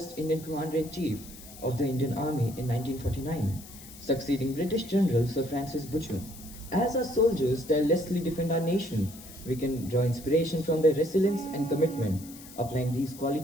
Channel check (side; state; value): left; noise; hiss, 17 dB below the sound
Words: Indian Commander-in-Chief of the Indian Army in 1949, succeeding British General Sir Francis Butcher. As our soldiers tirelessly defend our nation, we can draw inspiration from their resilience and commitment, applying these